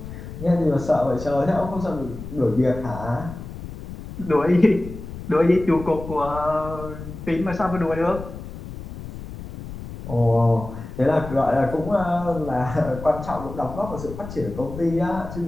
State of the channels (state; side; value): noise; left; rumble, 11 dB below the sound